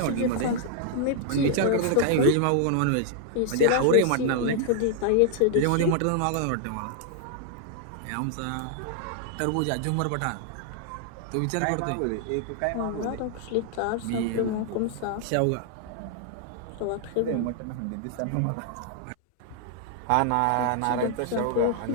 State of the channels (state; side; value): different; both; correlation 0.00